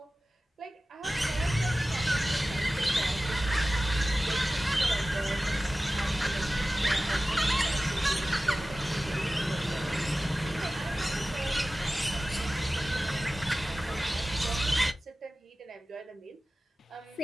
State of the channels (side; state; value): both; normal; correlation 0.96